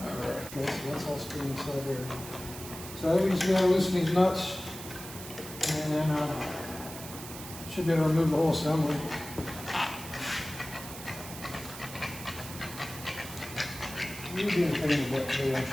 Alright, okay, so that's all spinning inside there. So I think we just gotta loosen these nuts, and then should be able to remove the whole assembly. You'd be in pain with that today, aren't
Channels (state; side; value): noise; right; hiss, 12 dB below the sound